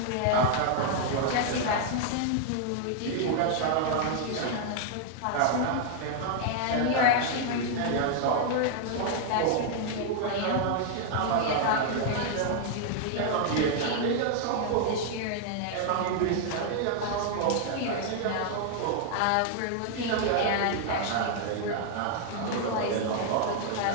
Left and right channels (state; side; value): different; both; correlation 0.00